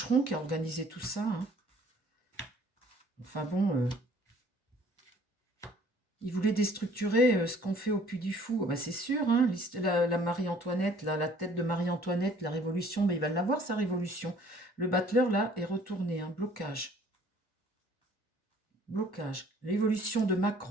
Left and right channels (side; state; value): both; normal; correlation 0.56